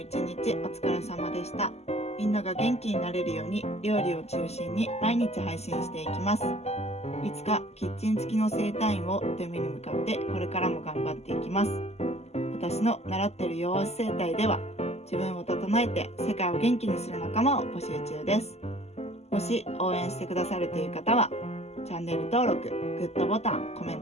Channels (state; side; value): late; right; 0.30 ms